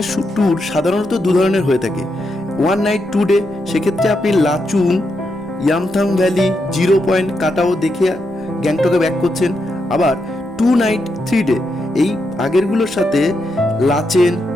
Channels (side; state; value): both; normal; correlation 0.83